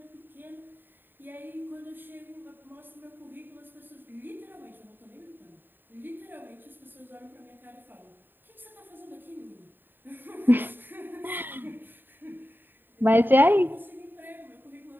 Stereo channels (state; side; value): late; left; 0.093 ms